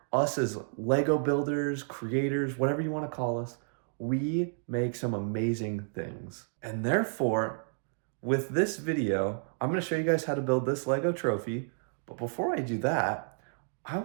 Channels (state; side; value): silent; left; digital silence